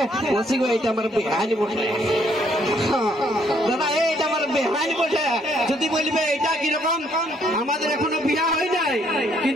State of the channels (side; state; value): both; normal; correlation 0.68